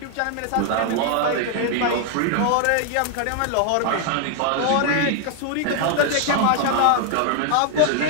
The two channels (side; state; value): both; different; correlation 0.00